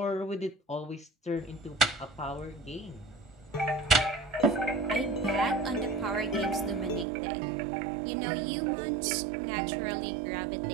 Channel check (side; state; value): left; drops out; at 7.1 s